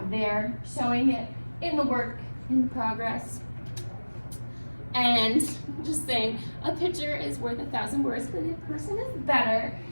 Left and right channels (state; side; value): inverted; both; correlation -1.00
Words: there, showing it in the work, in the progress. And just saying, a picture is worth 1,000 words, but in person is better.